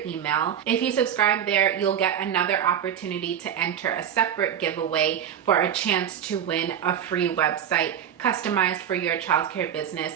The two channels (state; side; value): quieter; left; 9.2 dB